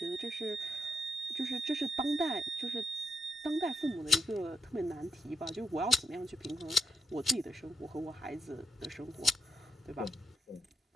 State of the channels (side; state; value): both; normal; correlation 0.83